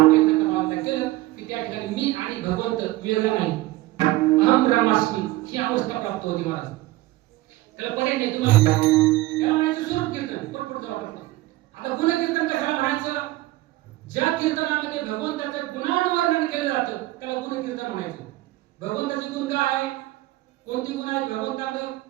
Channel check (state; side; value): quieter; left; 18.0 dB